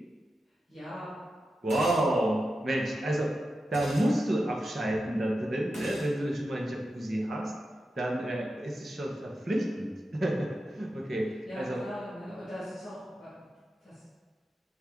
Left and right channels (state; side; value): normal; both; correlation 0.90